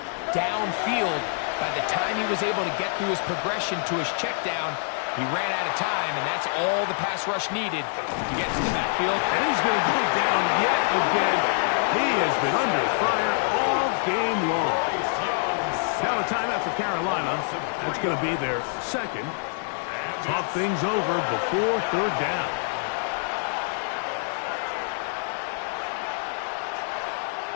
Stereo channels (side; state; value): right; silent; 61 dB below the other